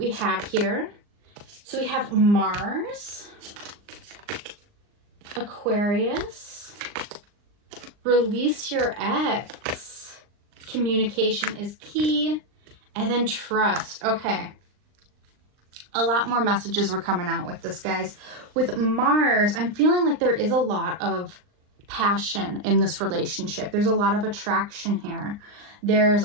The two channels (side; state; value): left; late; 39 ms